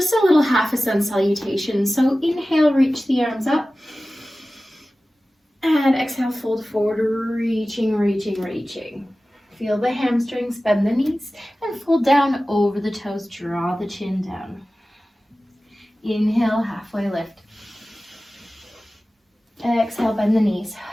a little half a sun salutation. So inhale, reach the arms up. And exhale, fold forward, reaching. Feel the hamstrings, bend the knees, and fold down over the toes. Draw the chin down. Inhale, halfway lift. Exhale, bend the knees.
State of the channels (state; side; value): normal; both; correlation 0.96